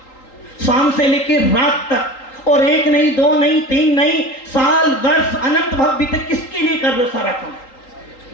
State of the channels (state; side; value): late; right; 3.8 ms